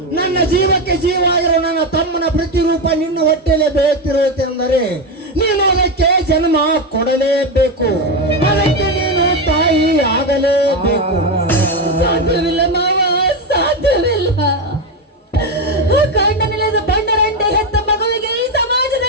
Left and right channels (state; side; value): normal; both; correlation 0.12